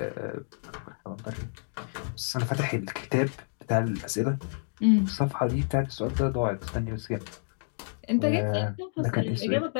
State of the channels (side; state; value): right; silent; digital silence